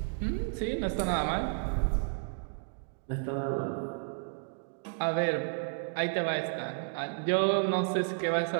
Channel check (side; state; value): left; silent; digital silence